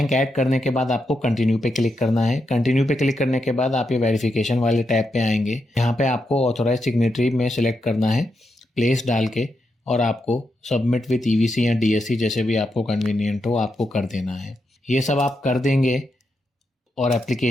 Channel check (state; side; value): normal; both; correlation 0.84